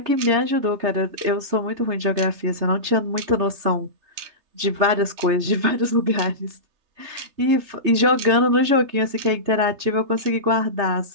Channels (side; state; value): left; late; 3.3 ms